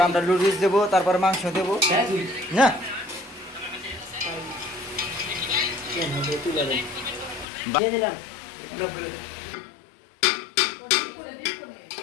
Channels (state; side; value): drops out; right; at 7.5 s